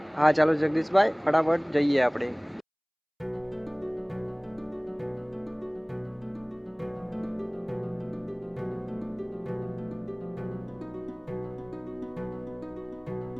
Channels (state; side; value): identical; both; correlation 1.00